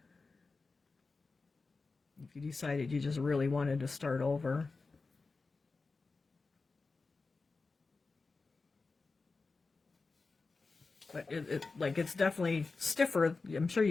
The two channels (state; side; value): quieter; right; 4.0 dB